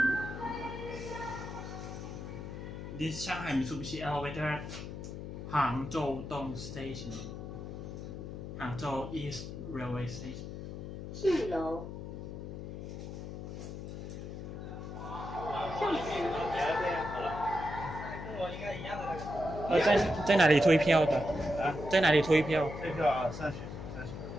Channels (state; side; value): noise; left; hum, 8 dB below the sound